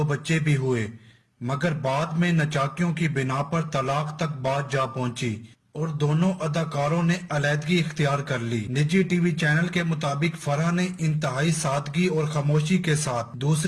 बच्चे भी हुए, मगर बाद में नचाकियों की बिना पर तलाक तक बात जा पहुंची और दोनों अदाकारों ने अलहदगी इख्तियार कर ली। निजी टीवी चैनल के मुताबिक फराह ने इंतहाई सादगी और खामोशी के साथ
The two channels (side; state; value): both; identical; correlation 1.00